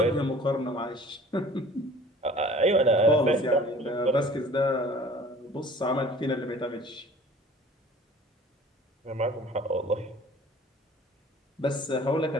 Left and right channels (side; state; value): both; normal; correlation 0.48